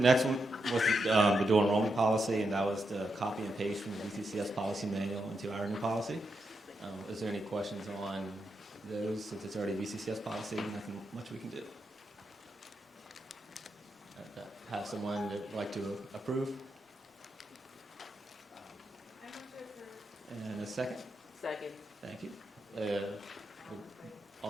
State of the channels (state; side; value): normal; both; correlation 0.84